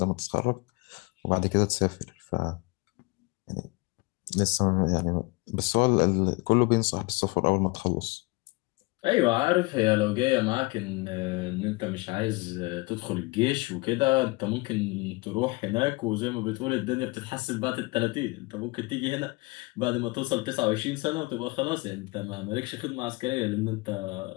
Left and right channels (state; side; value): quieter; right; 25.0 dB